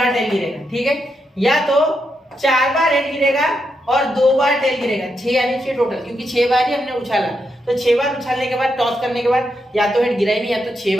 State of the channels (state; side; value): normal; both; correlation 0.83